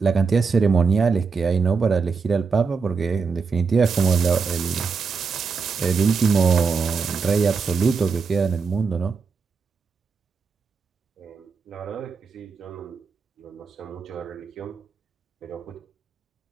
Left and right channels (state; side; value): quieter; left; 5.0 dB